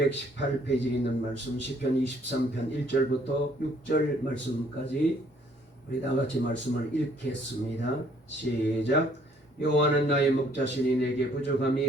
있는 말씀 시편 23편 1절부터 6절 말씀까지 우리 다같이 말씀을 읽겠습니다. 시작. 여호와는 나의 목자시니 내게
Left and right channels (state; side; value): normal; both; correlation 0.62